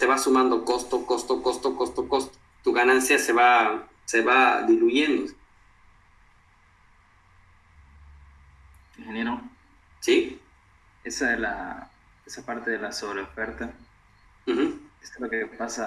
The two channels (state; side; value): identical; both; correlation 1.00